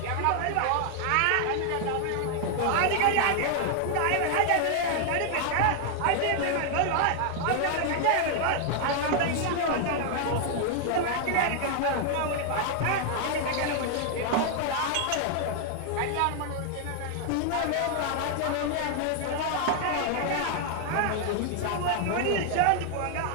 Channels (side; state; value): both; different; correlation 0.00